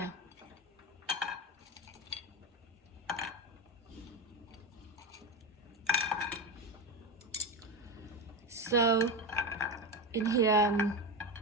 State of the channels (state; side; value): normal; both; correlation 0.18